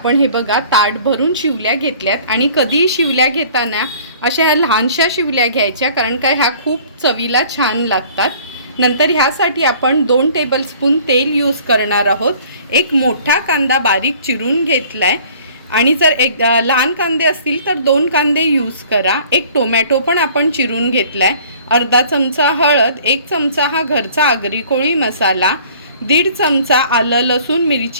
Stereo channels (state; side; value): inverted; both; correlation -0.52